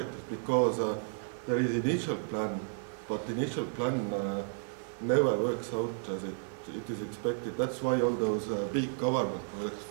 because there is initial plan, but the initial plan never works out as it is expected. That's why all those big government projects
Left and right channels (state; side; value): silent; left; digital silence